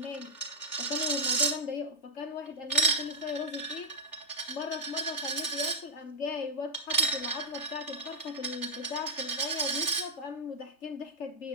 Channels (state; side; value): late; right; 3.3 ms